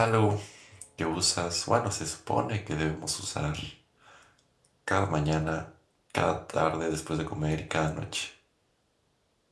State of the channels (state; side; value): identical; both; correlation 1.00